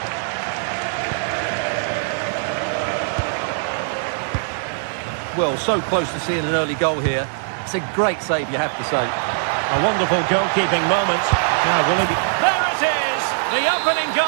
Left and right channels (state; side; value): silent; left; digital silence